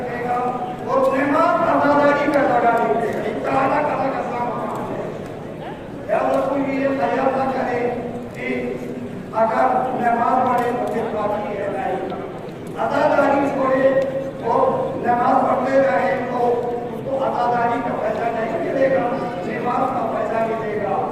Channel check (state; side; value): identical; both; correlation 1.00